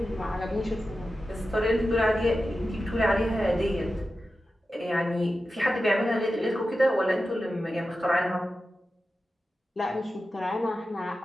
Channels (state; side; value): normal; both; correlation 0.92